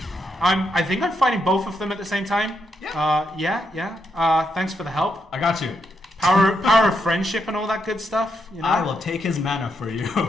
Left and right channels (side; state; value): both; normal; correlation 0.81